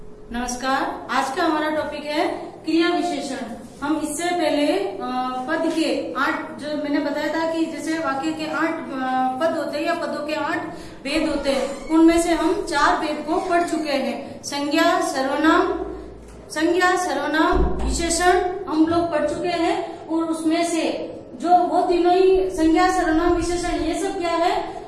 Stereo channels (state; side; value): identical; both; correlation 1.00